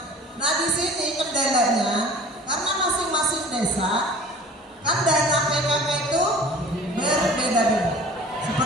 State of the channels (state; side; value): normal; both; correlation 0.45